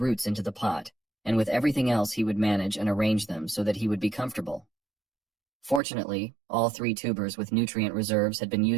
into the pot, and with everything else he would manage and arrange them so that he would be comfortable. Fortunately, all 3 tubers with nutrient reserves had been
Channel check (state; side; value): drops out; left; at 5.8 s